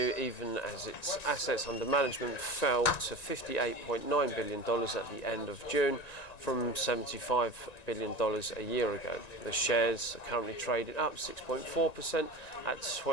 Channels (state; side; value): late; right; 1.9 ms